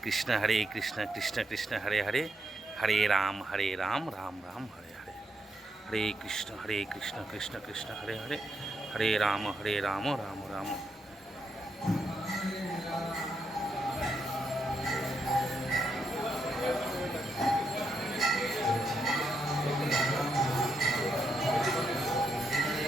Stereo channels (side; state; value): both; normal; correlation 0.80